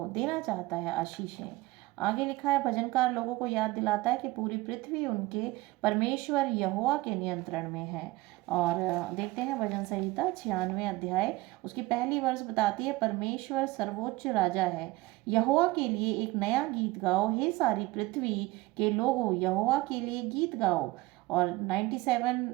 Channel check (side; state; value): left; quieter; 20.1 dB